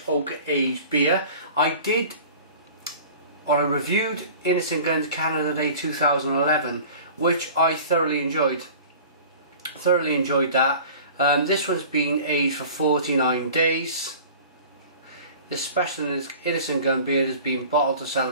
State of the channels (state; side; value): inverted; both; correlation -0.42